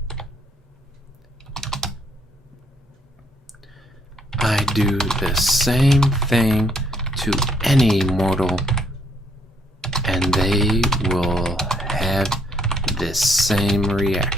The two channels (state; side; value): normal; both; correlation 0.69